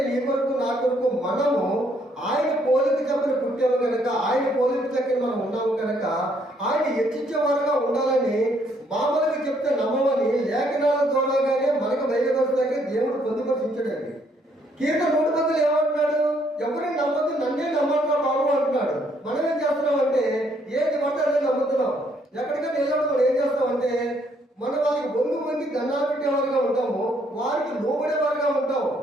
నీ కొరకు నా కొరకు మనము ఆయన పోలిక చెప్పని పుట్టాము కనుక, ఆయన పోలిక చక్కని మనం ఉన్నాము కనుక ఆయన హెచ్చించేవారుగా ఉండాలని మామూలుగా చెప్తే నమ్మమని లేఖనాల ద్వారాగానే మనకు బయలుపరుస్తాకే దేవుడు పొందుపరిచాడండి. కీర్తన 100 ఏమంటున్నాడు? ఎవరిని నమ్మద్దు, నన్నే నమ్మంటున్నాడు బాబు అంటున్నాడు. మనం ఏం చేస్తున్నాం అంటే ఏది పడితే అదే నమ్ముతున్నాం. ఎక్కడికి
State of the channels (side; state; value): both; normal; correlation 0.69